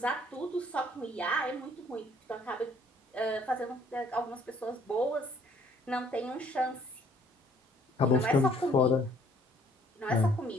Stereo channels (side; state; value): both; normal; correlation 0.61